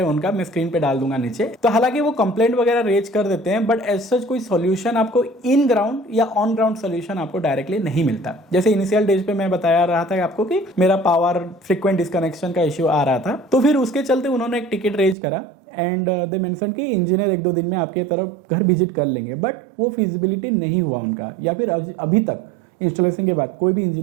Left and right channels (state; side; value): drops out; left; at 15.2 s